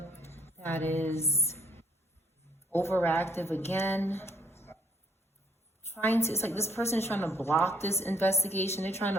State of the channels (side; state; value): both; normal; correlation 0.66